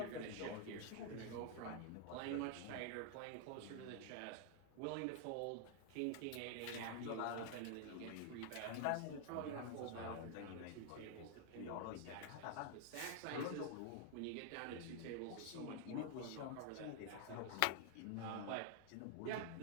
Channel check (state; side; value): different; both; correlation 0.00